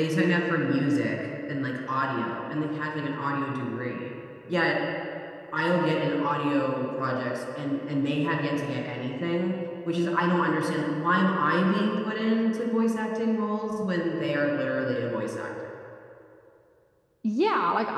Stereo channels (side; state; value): both; identical; correlation 1.00